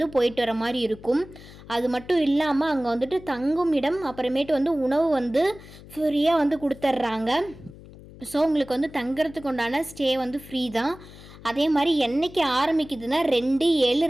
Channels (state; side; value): noise; left; hum, 19 dB below the sound